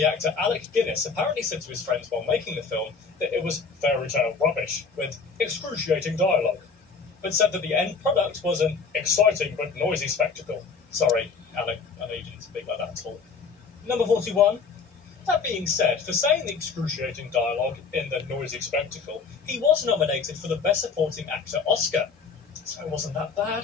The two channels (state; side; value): quieter; right; 5.1 dB